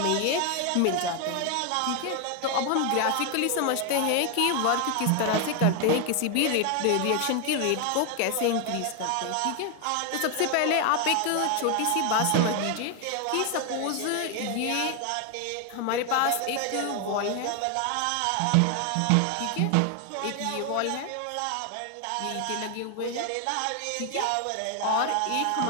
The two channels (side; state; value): both; different; correlation 0.01